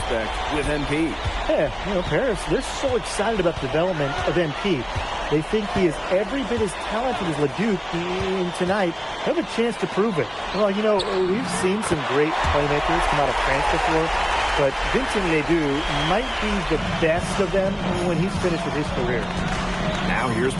with MP. Yeah, Paris, they're so excited about the development of MP. They think he is every bit as talented as Ledoux, and tonight they have a chance to prove it. Well, we've seen some great playmakers come out of France before, but Vincent Ledoux might be the best of them when he's finished with his career. Now here's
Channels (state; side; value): identical; both; correlation 1.00